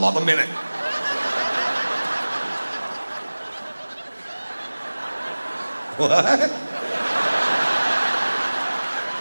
on the minute. What?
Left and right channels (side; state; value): both; inverted; correlation -1.00